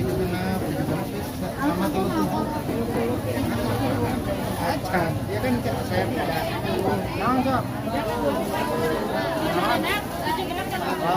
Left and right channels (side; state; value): both; identical; correlation 1.00